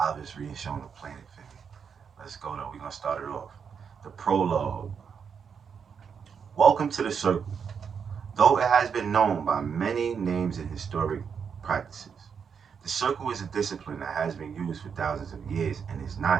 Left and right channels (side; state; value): left; quieter; 6.7 dB